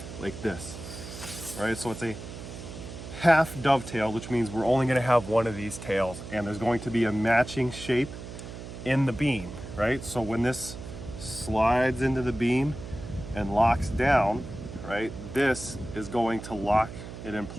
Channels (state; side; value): noise; right; hum, 11 dB below the sound